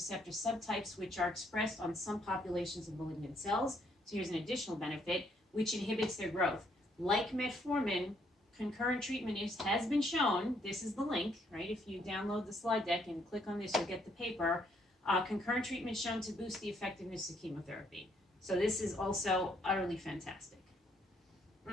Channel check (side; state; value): both; normal; correlation 0.70